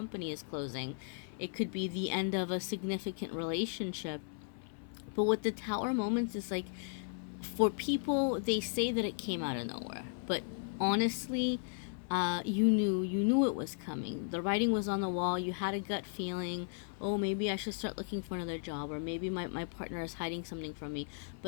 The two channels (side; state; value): right; silent; 54 dB below the other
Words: is closing. It could be the end of a significant relationship. But with the Tower moments is like, for people, they say that it came out of nowhere, but honestly, you knew it was coming. The writing was on the wall. You had a gut feeling, oh, maybe I should start looking for another job, or maybe my partner is hiding something from me.